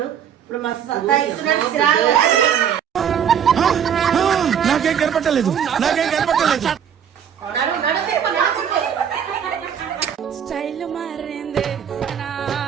ఇప్పుడు మస్తు నాకేం కనపట్టలేదు. స్టైల్ మారింది,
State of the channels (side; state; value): left; quieter; 8.5 dB